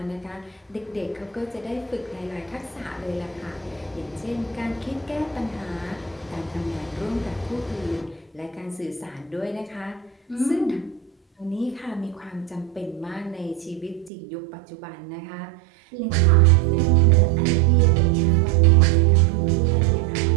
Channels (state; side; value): drops out; left; at 14.1 s